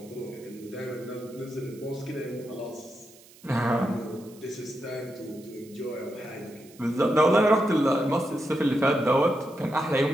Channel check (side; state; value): right; noise; hiss, 24 dB below the sound